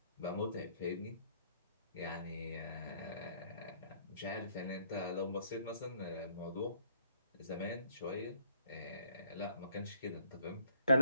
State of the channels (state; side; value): inverted; both; correlation -0.64